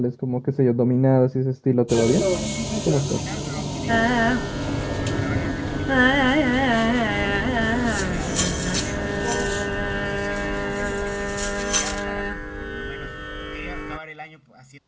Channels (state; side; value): identical; both; correlation 1.00